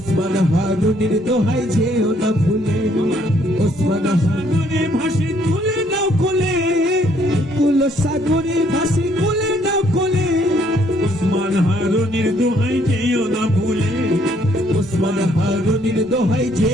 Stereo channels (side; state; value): both; normal; correlation 0.67